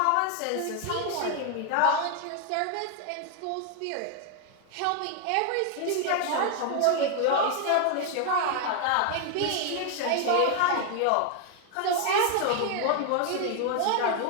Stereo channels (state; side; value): different; both; correlation 0.00